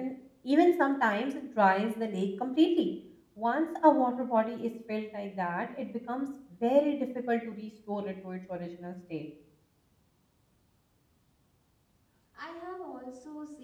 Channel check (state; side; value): identical; both; correlation 1.00